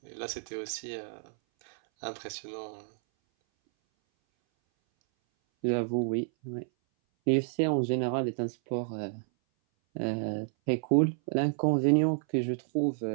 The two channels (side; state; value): left; silent; 58 dB below the other